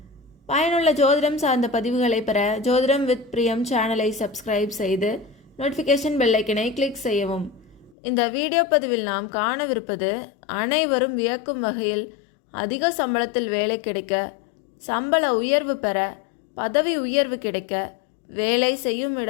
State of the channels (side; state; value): right; drops out; at 8.0 s